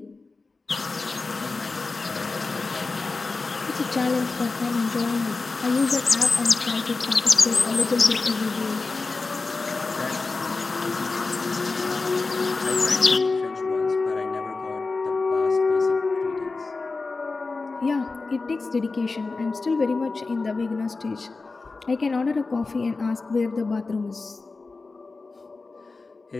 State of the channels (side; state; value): right; quieter; 3.9 dB